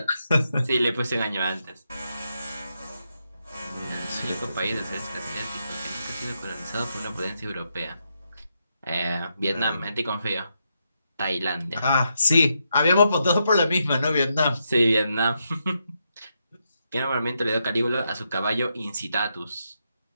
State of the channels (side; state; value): both; inverted; correlation -0.82